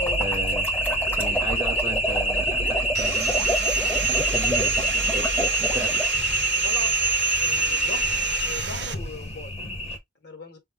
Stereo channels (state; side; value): normal; both; correlation 0.29